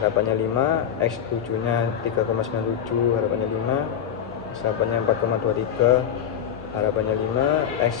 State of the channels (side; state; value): right; quieter; 8.9 dB